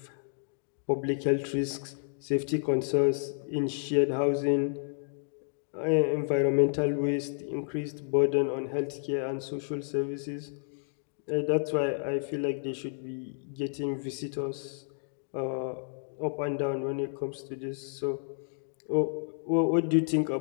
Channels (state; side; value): silent; right; digital silence